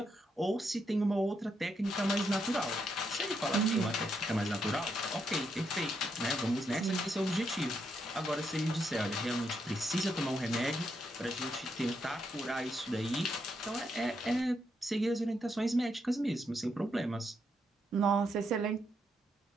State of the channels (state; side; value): normal; both; correlation 0.79